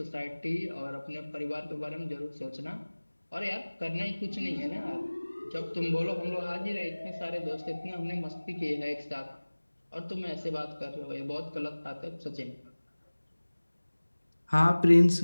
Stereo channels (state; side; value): inverted; both; correlation -1.00